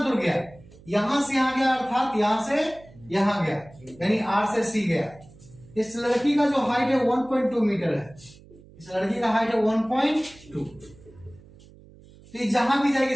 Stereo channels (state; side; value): noise; right; hum, 23 dB below the sound